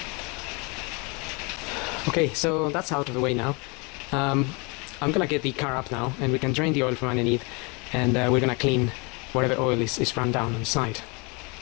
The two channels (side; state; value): right; quieter; 30.2 dB